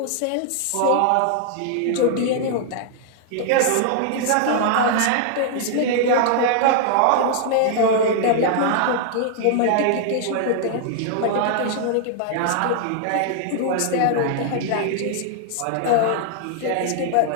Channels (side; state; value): both; different; correlation -0.01